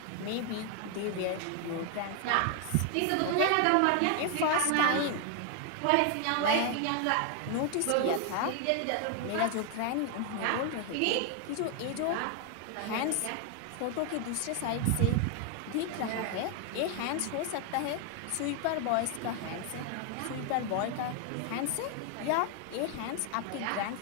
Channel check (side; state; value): both; different; correlation 0.00